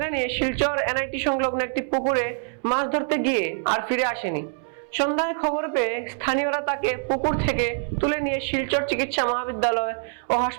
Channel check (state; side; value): silent; left; 62 dB below the other